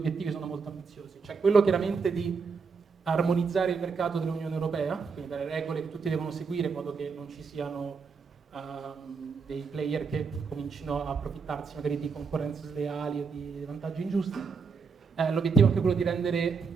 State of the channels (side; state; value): left; quieter; 5.3 dB